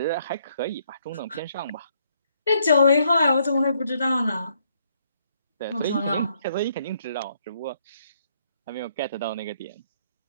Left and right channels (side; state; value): both; inverted; correlation -0.71